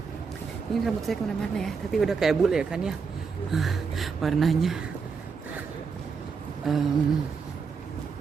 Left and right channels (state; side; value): quieter; left; 5.4 dB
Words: ini rambut saya kemana-mana ya, tapi udah kayak bule ya kan ya warnanya.